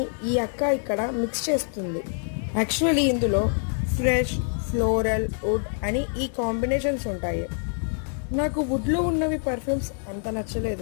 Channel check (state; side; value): silent; right; 61 dB below the other